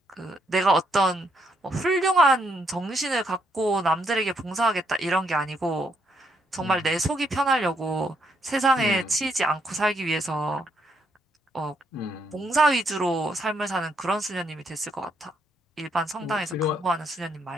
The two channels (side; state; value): both; normal; correlation 0.74